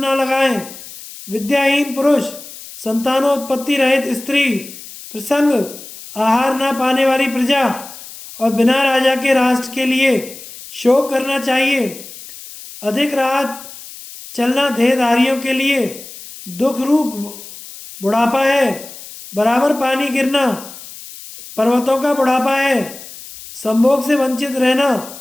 लगाएं। विद्याहीन पुरुष, संतानोत्पत्ति रहित स्त्री, प्रसंग आहार ना पाने वाली प्रजा और बिना राजा के राष्ट्र के लिए शोक करना चाहिए। अधिक रात चलना देहधारियों के लिए दुख रूप बुढ़ापा है। बराबर पानी गिरना पर्वतों का बुढ़ापा है। संभोग से वंचित रहना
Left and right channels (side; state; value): left; noise; hiss, 15 dB below the sound